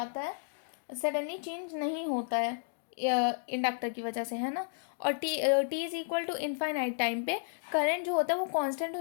है, सडनली चेंज नहीं होता है इंडक्टर की वजह से, है ना। और T is equal to infinite time पे करंट जो होता है वो कांस्टेंट हो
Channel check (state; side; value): silent; right; digital silence